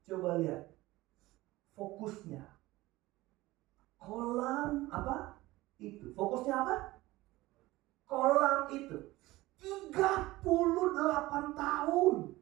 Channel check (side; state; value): left; quieter; 18.7 dB